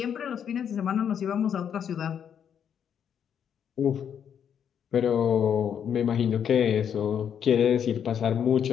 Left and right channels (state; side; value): quieter; right; 8.4 dB